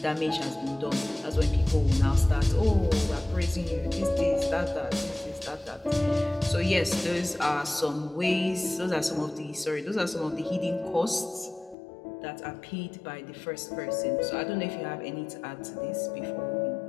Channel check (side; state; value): right; drops out; at 11.8 s